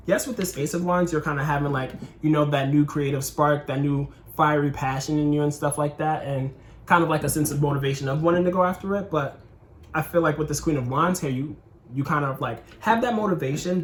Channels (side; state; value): both; identical; correlation 1.00